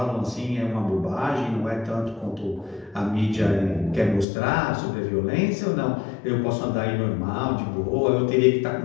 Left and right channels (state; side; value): drops out; right; at 4.2 s